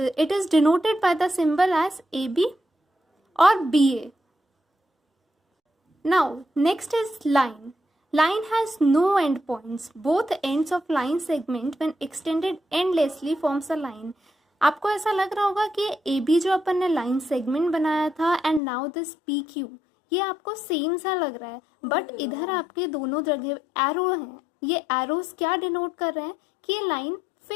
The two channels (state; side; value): drops out; right; at 18.6 s